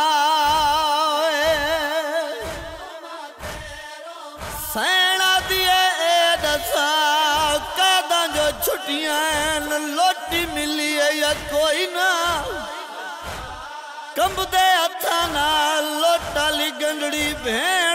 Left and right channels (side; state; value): both; identical; correlation 1.00